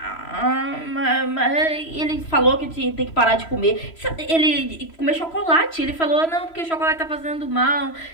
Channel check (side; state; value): right; late; 3.0 ms